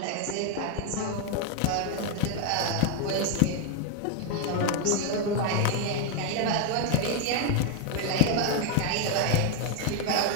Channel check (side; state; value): both; different; correlation 0.01